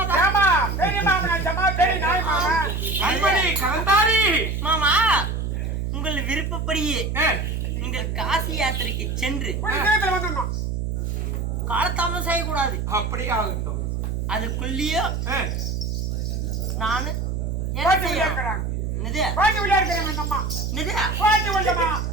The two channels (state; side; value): noise; right; hum, 2 dB below the sound